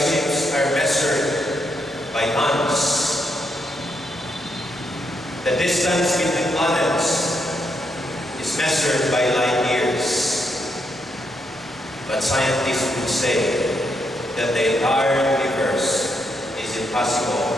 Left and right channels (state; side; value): normal; both; correlation 0.79